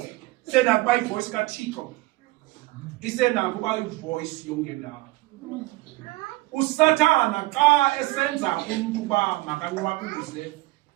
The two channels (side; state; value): left; quieter; 20.8 dB